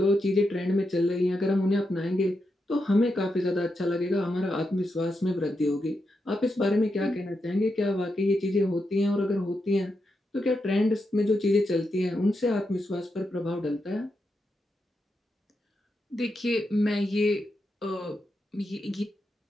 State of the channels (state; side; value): normal; both; correlation 0.85